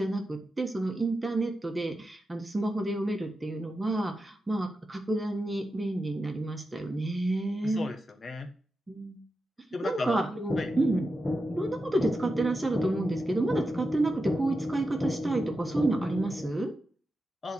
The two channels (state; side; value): normal; both; correlation 0.89